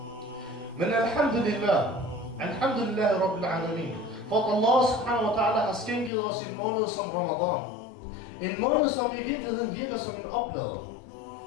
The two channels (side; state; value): right; drops out; at 6.1 s